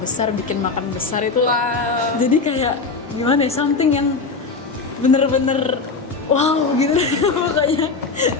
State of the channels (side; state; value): right; quieter; 4.3 dB